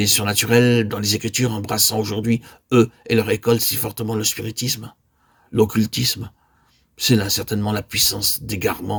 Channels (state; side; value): identical; both; correlation 1.00